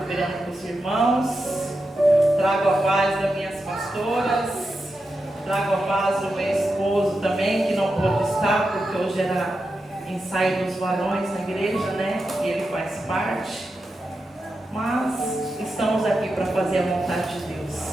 com os irmãos. Trago a paz das minhas pastoras, trago a paz do meu esposo também, que não pôde estar, porque hoje era ensaio dos varões na igreja, né? E ele faz parte. Mas estamos aqui para fazer a vontade de Deus.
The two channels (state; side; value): normal; both; correlation 0.89